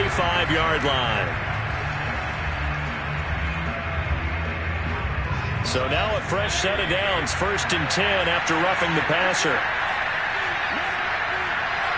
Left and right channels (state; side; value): identical; both; correlation 1.00